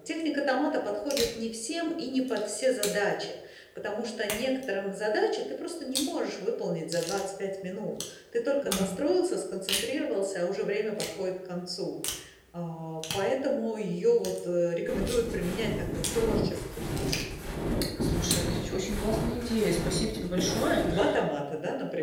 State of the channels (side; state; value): both; identical; correlation 1.00